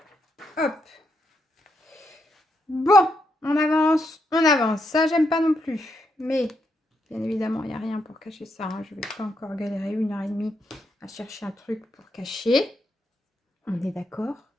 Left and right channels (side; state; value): both; normal; correlation 0.80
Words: Hop. Bon, on avance, on avance. Ça, j'aime pas non plus. Mais, bien évidemment, il n'y a rien pour cacher ça. Hein. Je vais pas encore galérer 1h30 à chercher un truc pour cacher. On est d'accord?